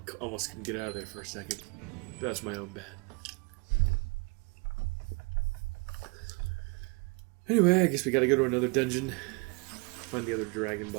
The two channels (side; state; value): left; quieter; 30.0 dB